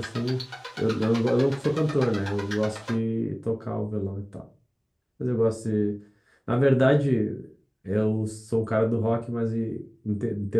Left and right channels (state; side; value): identical; both; correlation 1.00